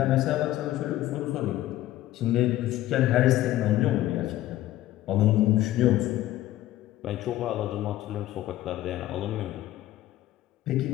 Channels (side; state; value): right; quieter; 14.7 dB